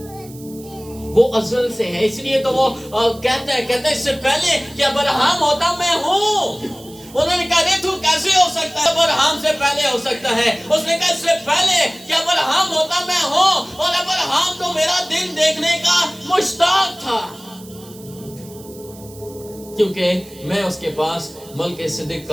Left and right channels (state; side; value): noise; right; hiss, 21 dB below the sound